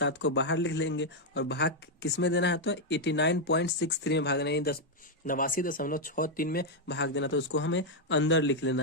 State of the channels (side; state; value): both; normal; correlation 0.00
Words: को बाहर लिख लेंगे और भाग किस में देना है, तो 89.63 में भाग देना है, 89.63 में भाग देना। तो उसको हमें अंदर लिख लेना